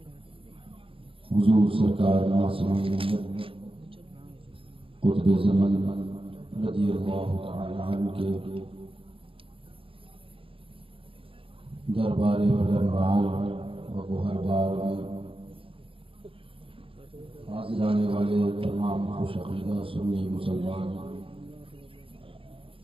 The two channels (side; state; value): left; late; 0.26 ms